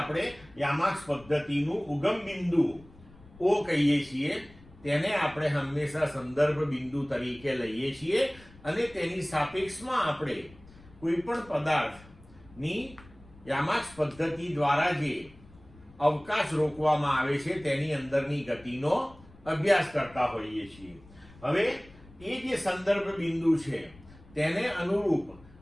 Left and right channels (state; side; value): noise; left; rumble, 23 dB below the sound